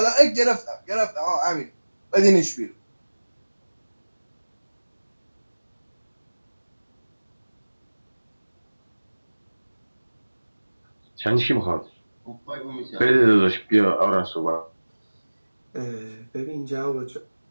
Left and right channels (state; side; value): inverted; both; correlation -1.00